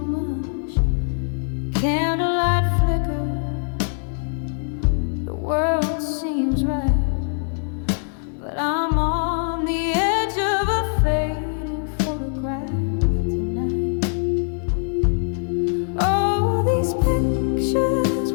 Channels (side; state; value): right; silent; 64 dB below the other